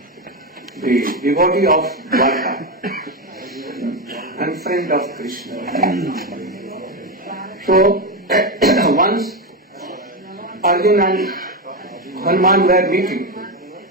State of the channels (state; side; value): normal; both; correlation 0.12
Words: the devotee of Dwarka and friend of Krishna. So, once Arjun and Hanuman were meeting.